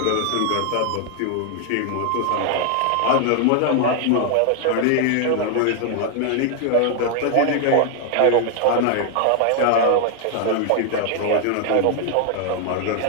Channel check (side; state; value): both; different; correlation 0.00